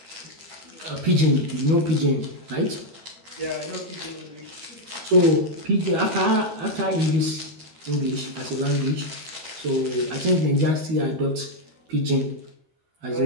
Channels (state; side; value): late; left; 13 ms